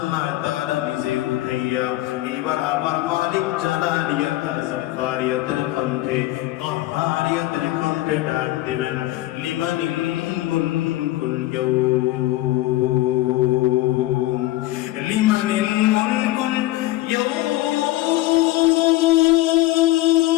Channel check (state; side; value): quieter; right; 17.0 dB